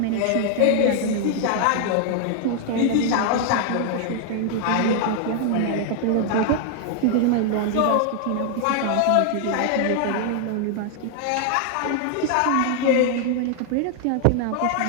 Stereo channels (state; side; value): different; both; correlation 0.00